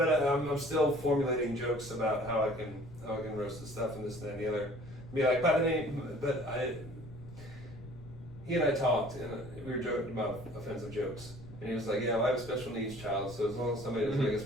still formulating jokes about how I can roast the stuff and this and that and the other. Be like, he and I talked and we were joking about offensive jokes, and he was like, "Yeah, well, I have a special needs child, so as long as somebody doesn't make a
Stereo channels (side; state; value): left; noise; rumble, 16 dB below the sound